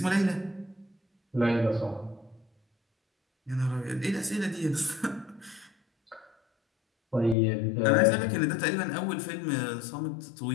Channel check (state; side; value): drops out; right; at 7.4 s